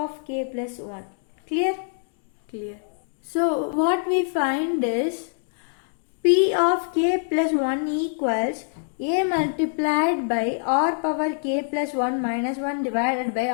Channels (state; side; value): silent; right; 62 dB below the other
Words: k plus 1. Clear? Clear. So what we find is p of k plus 1 equals a multiplied by r power k plus 1 minus 1 divided by